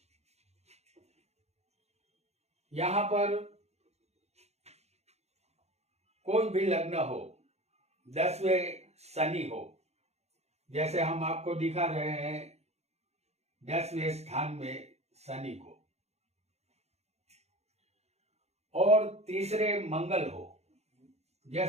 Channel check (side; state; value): left; late; 0.31 ms